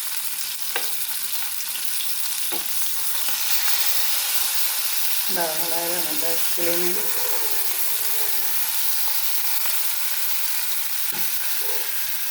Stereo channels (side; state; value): both; identical; correlation 1.00